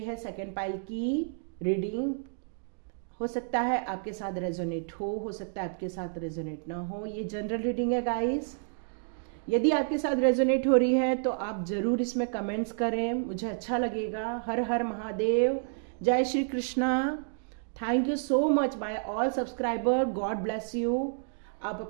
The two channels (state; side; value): silent; left; digital silence